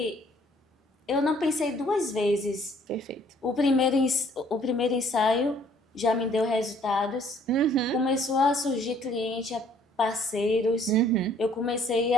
eu não pensei duas vezes. Perfeito. O primeiro ensaio já me deu resultados. Uhum. Começou a surgir cliente, parceiros. Uhum. Eu comecei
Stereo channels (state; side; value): normal; both; correlation 0.60